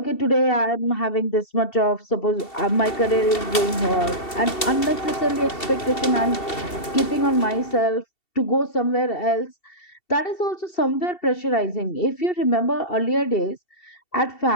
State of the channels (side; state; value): right; late; 2.7 ms